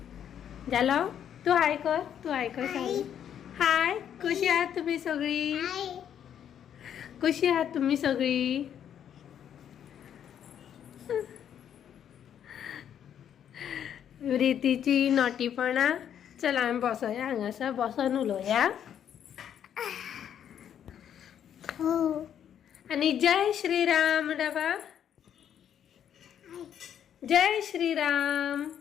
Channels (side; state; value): right; quieter; 9.3 dB